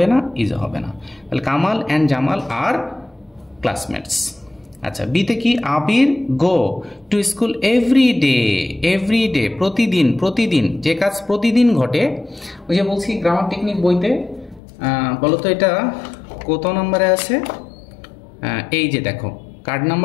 না, ইজও হবে না, তাহলে Kamal and Jamal are classmates. আচ্ছা, বিতে কি? Abir go to school every day, প্রতিদিন, যে কাজ প্রতিদিন ঘটে। ওই যে বলছি গ্রামার টেকনিক বইতে, বলতো এটা কত নম্বরে আছে? এই যে দেখো, card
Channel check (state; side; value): drops out; right; at 14.6 s